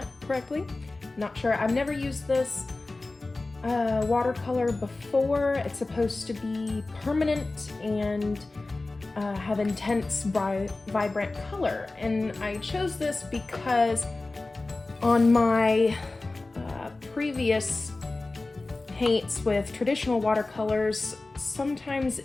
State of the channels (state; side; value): quieter; right; 3.2 dB